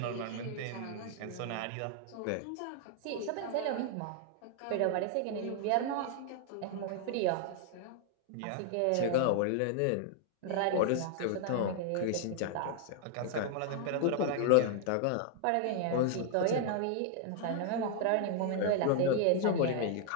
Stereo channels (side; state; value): both; different; correlation 0.00